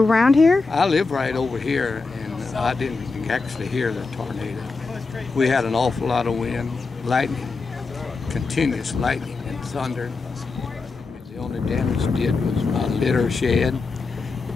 around here? I live right over here, and I didn't actually hear the tornado. We had an awful lot of wind, lightning, continuous lightning and thunder. The only damage it did was my litter shed,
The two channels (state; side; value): quieter; right; 4.1 dB